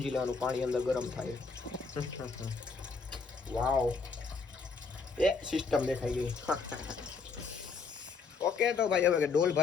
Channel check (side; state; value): right; quieter; 4.7 dB